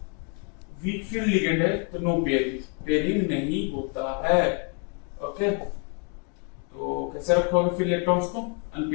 वीक फील्ड लिगेंड है, तो नो पेयरिंग, पेयरिंग नहीं होता है। ओके, तो कैसे रखोगे फिर इलेक्ट्रॉन्स को?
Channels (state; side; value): quieter; right; 39.3 dB